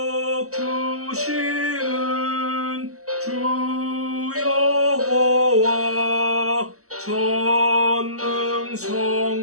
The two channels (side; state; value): left; late; 0.65 ms